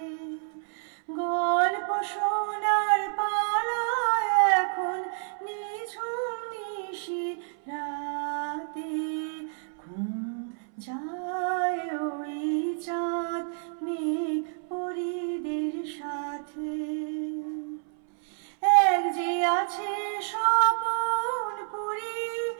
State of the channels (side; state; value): left; silent; 59 dB below the other